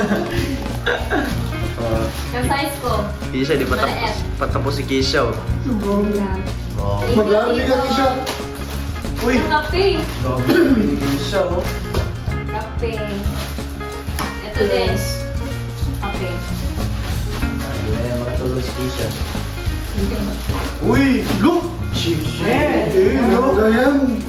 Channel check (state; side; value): identical; both; correlation 1.00